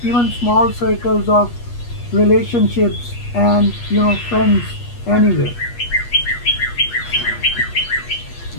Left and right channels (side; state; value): right; late; 8.3 ms